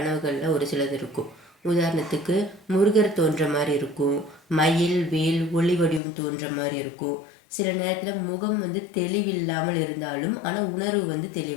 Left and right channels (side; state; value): right; drops out; at 6.0 s